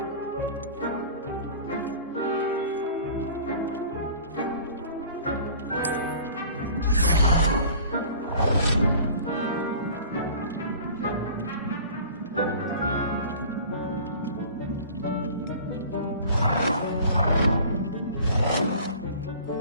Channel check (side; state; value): both; inverted; correlation -0.45